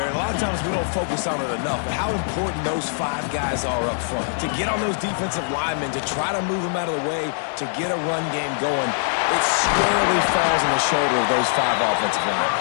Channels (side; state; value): right; silent; digital silence